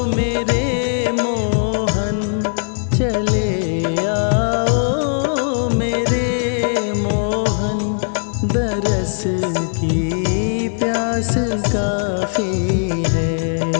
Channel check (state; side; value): silent; right; 58 dB below the other